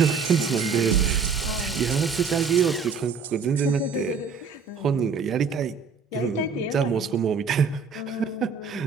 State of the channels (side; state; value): left; quieter; 5.4 dB